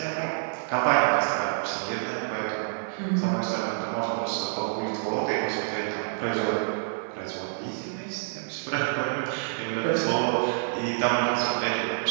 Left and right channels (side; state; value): left; silent; digital silence